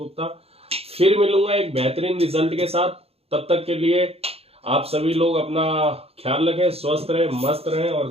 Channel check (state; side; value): late; left; 0.29 ms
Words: फिर मिलूंगा एक बेहतरीन रिजल्ट के साथ। तब तक के लिए आप सभी लोग अपना ख्याल रखें, स्वस्थ रहें, मस्त रहें, और